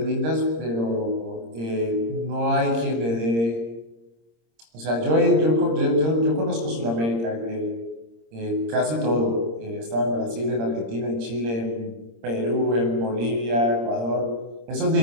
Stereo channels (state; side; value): late; left; 26 ms